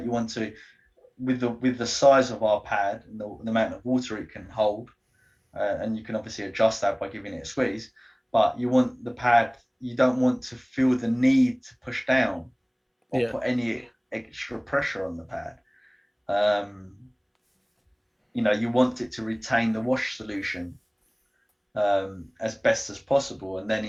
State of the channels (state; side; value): identical; both; correlation 1.00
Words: You want to, with the size of our pad and the amount of water it can hold, and you can obviously adjust that by giving it a squeeze. But you want the pad. You don't want to feel the need to push down or Yeah. put any extra pressure on the pad. Um, you want it to retain the wash solution as best as possible, and then